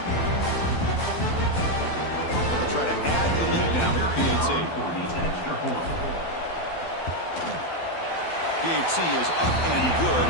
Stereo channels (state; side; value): late; right; 12 ms